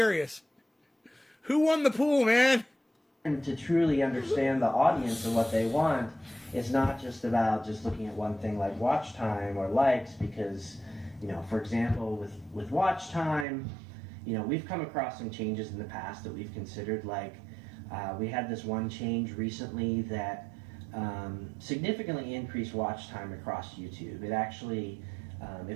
Who won the pool, man? And to truly understand the audience and what they want, it's not just about just looking at one thing like watch time or likes, because, for example, with watch time, we've come across some changes in the past that we've considered. Like we had this one change recently that significantly increased watch time across YouTube. It actually,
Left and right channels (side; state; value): left; drops out; at 13.5 s